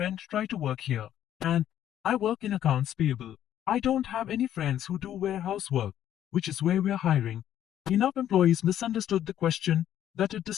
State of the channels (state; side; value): quieter; right; 11.1 dB